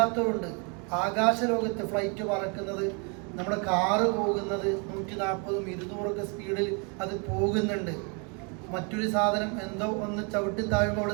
ആകാശലോകത്ത് ഫ്ലൈറ്റ് പറക്കുന്നത്, നമ്മുടെ കാറ് പോകുന്നത് 140 200 സ്പീഡിൽ അത് പോകുന്നുണ്ട്. മറ്റൊരു സാധനം എന്തോ ഒന്ന് ചവിട്ടി താഴുമ്പോൾ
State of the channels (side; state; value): left; quieter; 34.8 dB